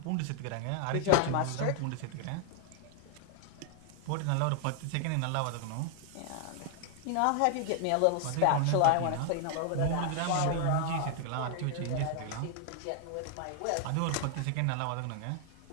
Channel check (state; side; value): different; both; correlation 0.00